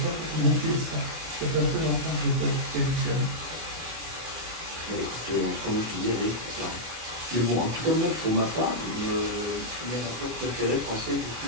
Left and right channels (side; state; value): left; late; 24 ms